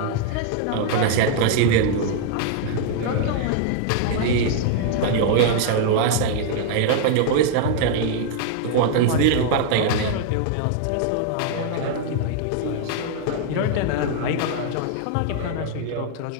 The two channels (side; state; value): both; different; correlation 0.00